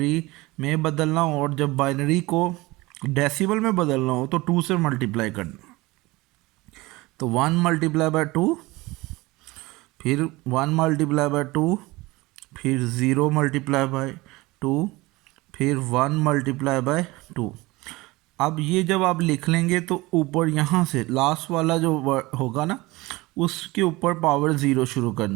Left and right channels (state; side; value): quieter; left; 21.5 dB